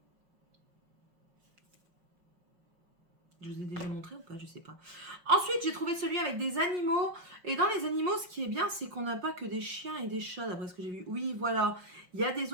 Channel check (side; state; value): left; late; 5.6 ms